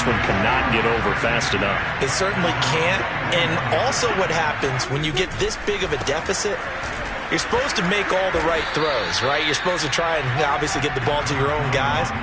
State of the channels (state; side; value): noise; left; hum, 21 dB below the sound